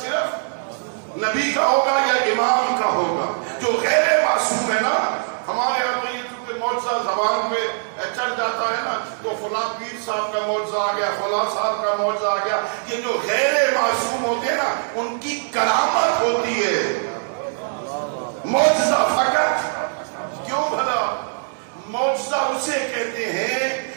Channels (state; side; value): silent; left; digital silence